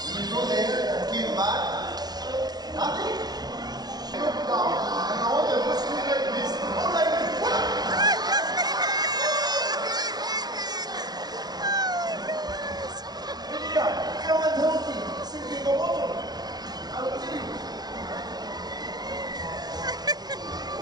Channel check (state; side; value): late; left; 0.19 ms